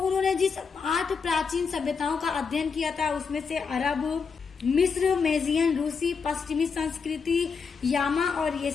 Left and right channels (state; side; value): quieter; right; 5.5 dB